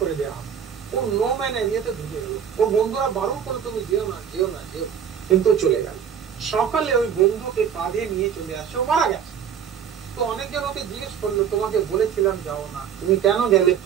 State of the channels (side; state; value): left; quieter; 8.3 dB